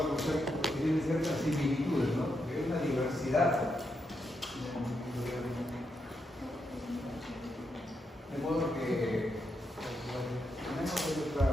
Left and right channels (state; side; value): normal; both; correlation 0.82